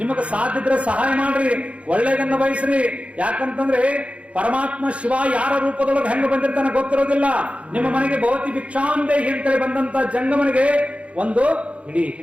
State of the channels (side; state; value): left; late; 0.062 ms